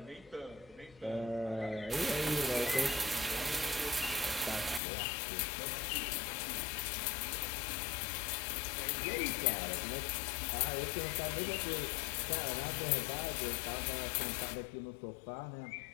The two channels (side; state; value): right; drops out; at 4.8 s